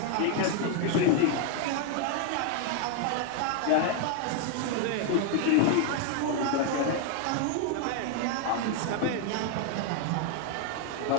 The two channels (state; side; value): different; both; correlation 0.00